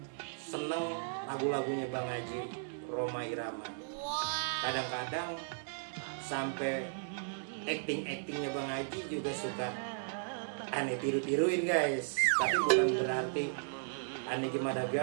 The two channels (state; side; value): silent; left; digital silence